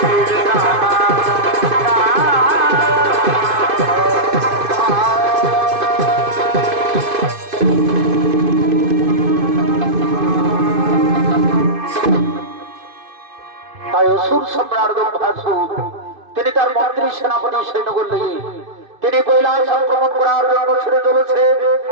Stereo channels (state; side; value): late; left; 2.5 ms